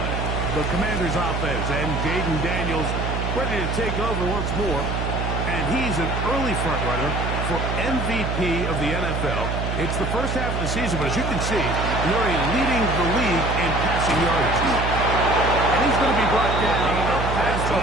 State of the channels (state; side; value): noise; right; hum, 2 dB below the sound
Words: The Commanders' offense and Jaden Daniels ready to take over once more. And he's an early front runner for MVP of the NFL. It's the first half of the season, but as you can see, Murray leading the league in passing yardage. And he's going to be brought down past the